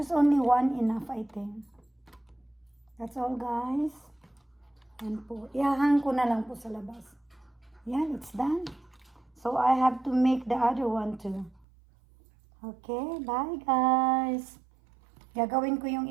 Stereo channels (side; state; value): left; drops out; at 11.7 s